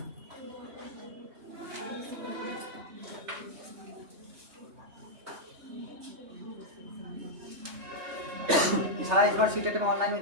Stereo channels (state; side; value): late; left; 3.3 ms